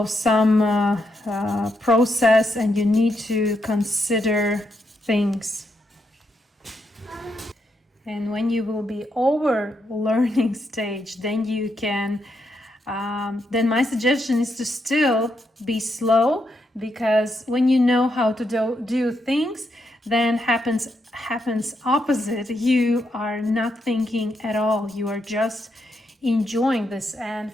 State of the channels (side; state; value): both; normal; correlation 0.80